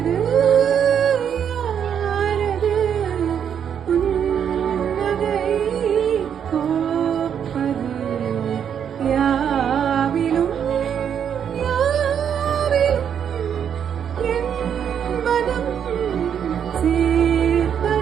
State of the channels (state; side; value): quieter; left; 8.3 dB